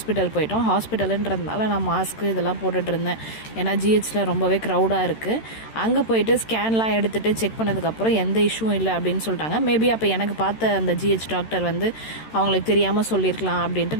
போயிட்டோம். ஹாஸ்பிட்டலுன்றதுனால நான் மாஸ்க்கு இதெல்லாம் போட்டுட்டு இருந்தேன். ஏன்னா ஜிஹெச்சில் ரொம்பவே க்ரௌடாக இருக்குது. அங்கே போயிட்டு ஸ்கேன்லாம் எடுத்துகிட்டு செக் பண்ணதுக்கப்புறம் எந்த இஷ்யூவும் இல்லை அப்படின்னு சொல்லிட்டாங்க. மேபி அப்போ எனக்கு பார்த்த அந்த ஜிஹெச் டாக்டர் வந்து அவங்களுக்கு தெரியாமல் சொல்லியிருக்கலாம் அப்படின்ட்டு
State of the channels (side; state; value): right; late; 13 ms